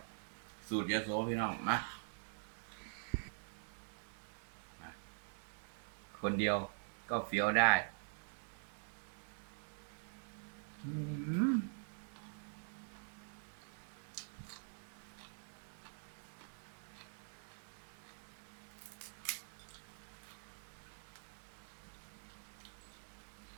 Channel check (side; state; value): left; silent; digital silence